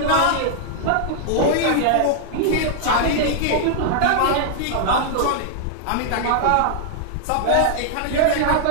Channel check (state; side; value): different; both; correlation -0.01